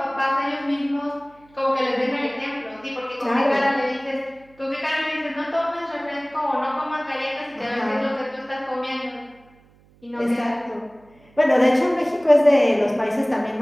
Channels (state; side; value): noise; right; hum, 30 dB below the sound